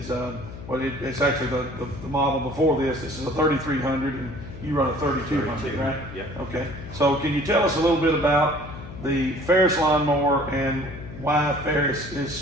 it's actually the model before this. This is a 3300, and you run a 3200, right? Yep. Okay. So, can you tell us a little bit about the Ferris lawnmower and why Ferris is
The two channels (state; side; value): noise; left; hum, 12 dB below the sound